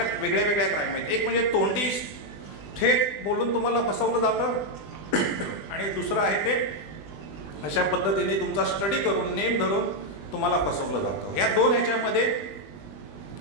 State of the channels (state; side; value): late; right; 20 ms